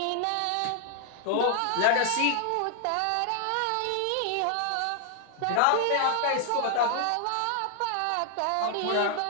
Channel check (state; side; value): different; both; correlation 0.00